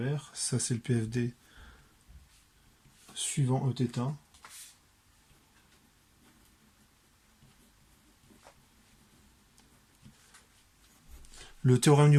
ça c'est le PFD suivant Eθ. Le théorème du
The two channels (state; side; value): identical; both; correlation 1.00